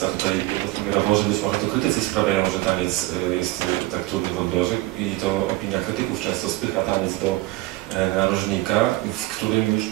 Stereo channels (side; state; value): left; quieter; 18.9 dB